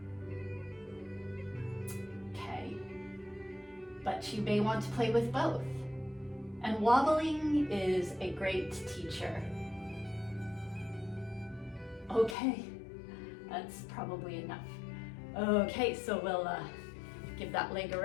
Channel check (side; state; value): right; drops out; at 12.4 s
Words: Okay, but you may want to play with both. And wobbling is a great teacher. Okay, that's probably enough. Okay, so we'll give that leg a